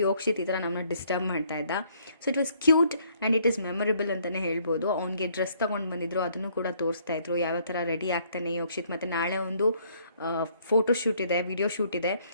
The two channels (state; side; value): inverted; both; correlation -0.65